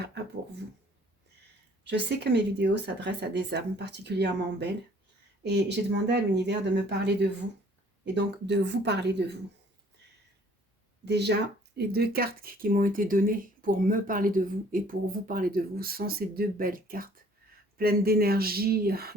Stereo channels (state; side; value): normal; both; correlation 0.57